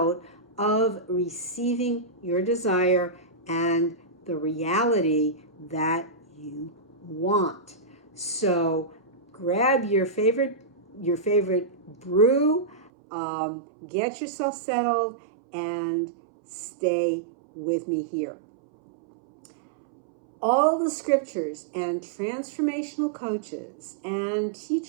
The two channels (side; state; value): left; drops out; at 12.9 s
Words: of receiving your desire and the reality that you want. So grab your favorite brew, get yourself settled, and stay with me here. All the scriptures and transformational coaches and